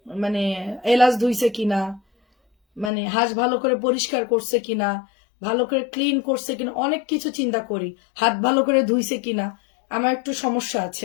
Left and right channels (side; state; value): right; drops out; at 2.9 s